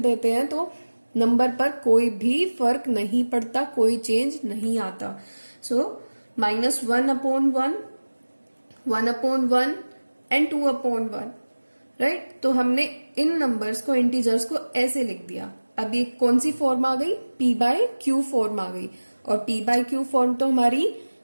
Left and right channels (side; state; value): both; inverted; correlation -1.00